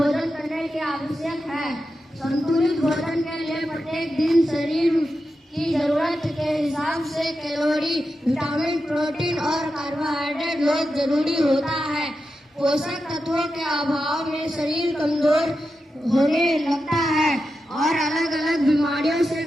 करने की आवश्यक है। संतुलित भोजन के लिए प्रत्येक दिन शरीर की जरूरत के हिसाब से कैलोरी, विटामिन, प्रोटीन और कार्बोहाइड्रेट लोग जरूरी होता है। पोषक तत्वों के अभाव में शरीर कमजोर होने लगता है और अलग अलग बीमारियों से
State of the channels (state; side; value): normal; both; correlation 0.90